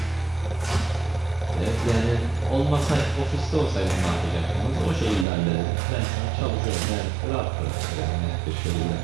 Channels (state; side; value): drops out; left; at 5.2 s